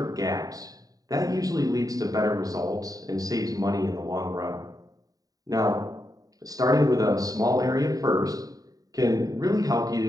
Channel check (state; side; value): late; left; 0.18 ms